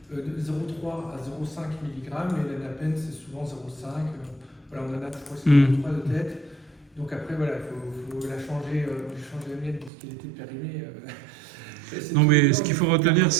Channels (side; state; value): left; drops out; at 9.9 s